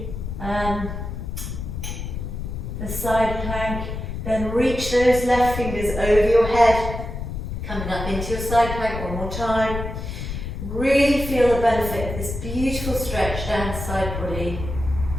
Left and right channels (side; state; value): left; noise; rumble, 6 dB below the sound